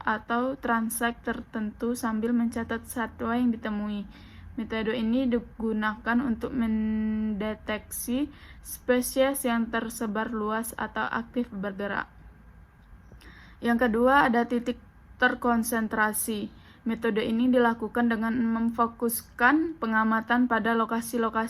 transek tertentu sambil mencatat satwa yang ditemui. Metode ini digunakan untuk mendeteksi spesies yang tersebar luas atau aktif bergerak. Yang kedua ada titik terkonsentrasi. Metode ini dilakukan dengan memfokuskan pengamatan pada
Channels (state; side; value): identical; both; correlation 1.00